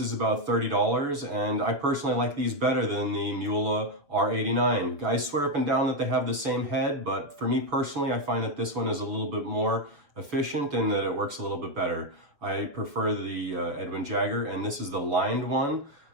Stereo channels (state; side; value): late; left; 7.0 ms